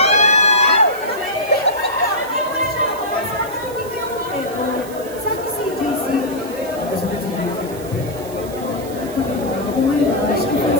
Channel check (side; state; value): right; noise; hiss, 17 dB below the sound